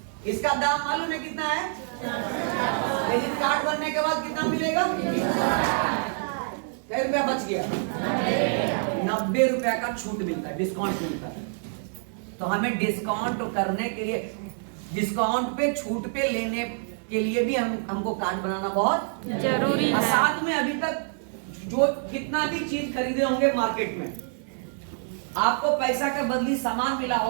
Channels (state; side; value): silent; left; 60 dB below the other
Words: इसका दाम मालूम है कितना है, लेकिन कार्ड बनने के बाद कितना मिलेगा, कितने रुपया बच गया, 90 रुपया का छूट मिलता है, डिस्काउंट मिलता है। तो हमें डिस्काउंट करने के लिए, डिस्काउंट पे छूट पे लेने के लिए भी हमको कार्ड बनाना बहुत जरूरी है। साथ में अभी तक जो कितना भी चीज खरीदे होंगे मार्केट में, आपको पैसा के बदली सामान मिला